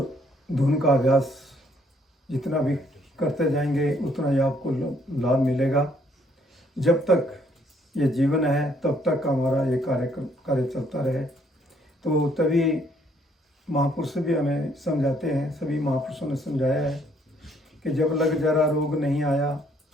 धुन का अभ्यास जितना भी करते जाएंगे उतना ही आपको लाभ मिलेगा। जब तक ये जीवन है तब तक हमारा ये कार्य चलता रहे। तो तभी महापुरुष भी हमें समझाते हैं, सभी महापुरुषों ने समझाया है कि जब लग जरा रोग नहीं आया,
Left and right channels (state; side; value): normal; both; correlation 0.67